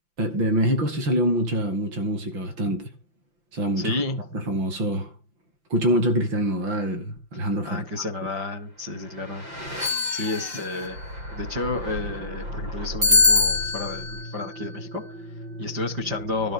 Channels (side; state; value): left; late; 5.8 ms